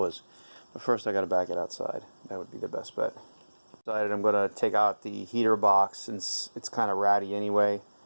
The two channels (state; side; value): inverted; both; correlation -1.00